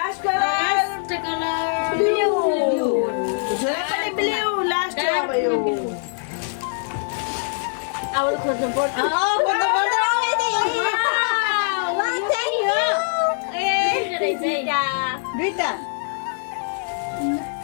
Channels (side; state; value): right; silent; digital silence